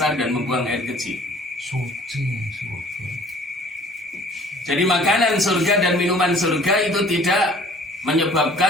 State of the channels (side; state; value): both; normal; correlation 0.52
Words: dan membuang air kecil. Jadi makanan surga dan minuman surga itu tidak